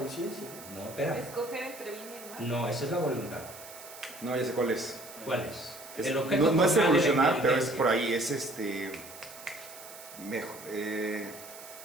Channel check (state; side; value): noise; right; hiss, 16 dB below the sound